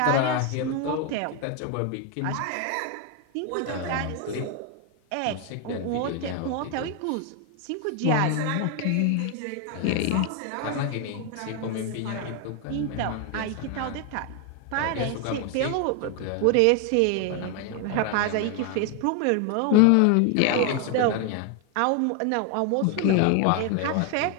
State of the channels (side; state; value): both; different; correlation 0.01